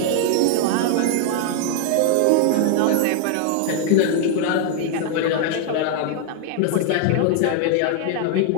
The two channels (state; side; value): different; both; correlation 0.00